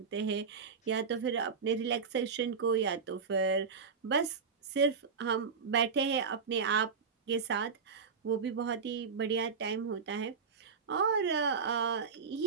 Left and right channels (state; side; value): quieter; left; 5.6 dB